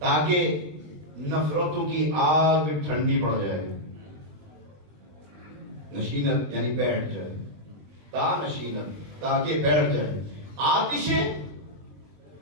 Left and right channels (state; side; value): late; left; 21 ms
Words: نفرتوں کی آگ ٹھنڈی پڑ جائے. نشینت یعنی بیٹھ جائے، تا نشینت تاکہ بیٹھ جائے. آتش